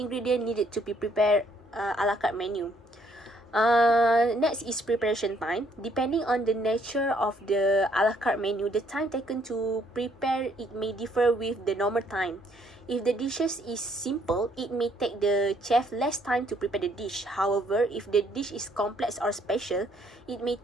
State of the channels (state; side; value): normal; both; correlation 0.67